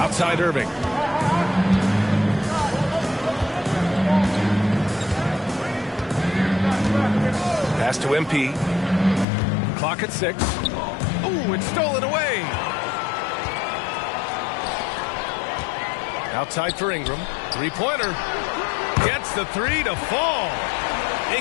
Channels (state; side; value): drops out; right; at 9.2 s